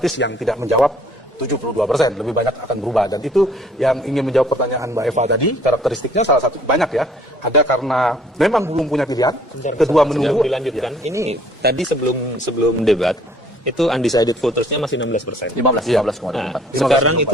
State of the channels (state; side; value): normal; both; correlation 0.58